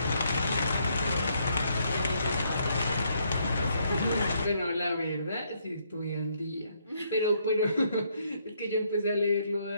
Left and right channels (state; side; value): inverted; both; correlation -0.72